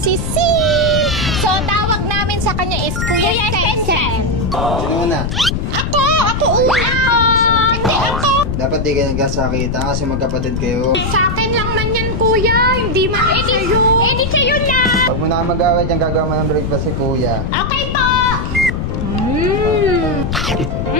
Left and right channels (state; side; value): noise; left; rumble, 2 dB below the sound